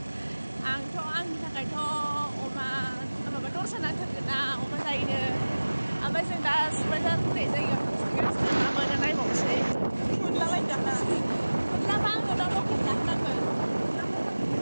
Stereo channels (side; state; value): both; inverted; correlation -1.00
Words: आंथ' आंनि थाखायथ' अमा माबा दरसा नांथारगोन ना अमा जायो ओमफ्राय जों दा सुबायजार होननाय जायगायाव मा मोनो नायबावसै मोनलाबायदों मोनलाबा आङो दा लकेल जाहोनांगोन